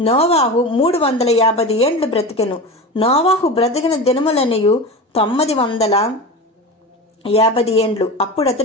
నోవాహు 350 ఏండ్లు బ్రతికెను. నోవాహు బ్రతికిన దినములన్నయు 950 ఏండ్లు. అప్పుడు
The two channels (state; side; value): normal; both; correlation 0.27